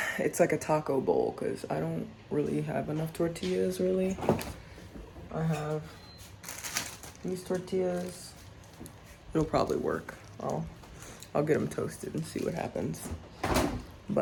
It's like a taco bowl, because I don't really have enough tortillas, really. I have these tortillas. It'll probably work. I'll get them toasted and see what happens.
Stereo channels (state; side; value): identical; both; correlation 1.00